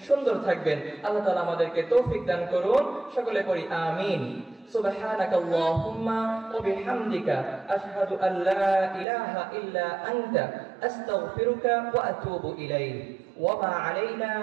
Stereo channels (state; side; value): drops out; left; at 9.1 s